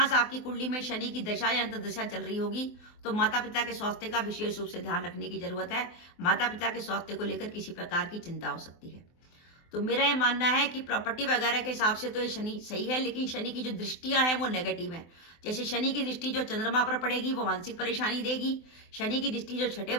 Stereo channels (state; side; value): late; right; 24 ms